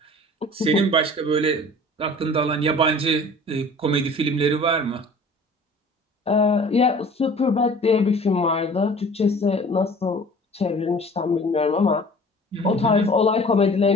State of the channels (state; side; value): normal; both; correlation 0.46